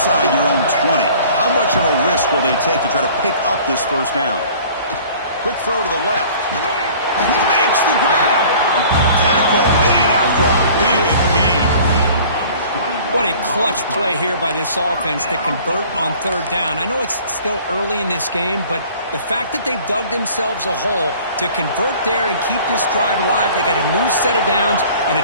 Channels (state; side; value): inverted; both; correlation -0.49